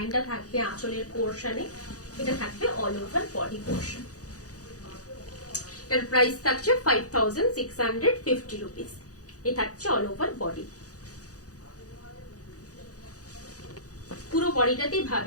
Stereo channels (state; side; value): late; right; 0.67 ms